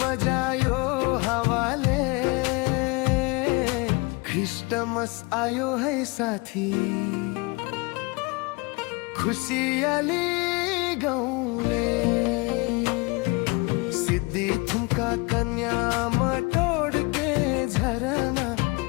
हावाले। क्रिस्टमस आयो है साथी, खुसियाली गाउँले। सिद्धि थुम्का कन्या मटोड के झरना,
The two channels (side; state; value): right; quieter; 27.2 dB